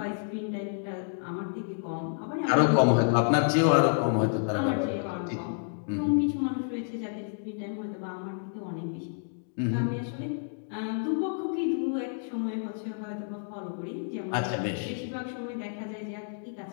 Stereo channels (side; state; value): right; silent; digital silence